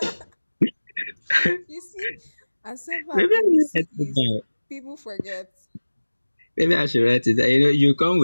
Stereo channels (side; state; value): both; inverted; correlation -1.00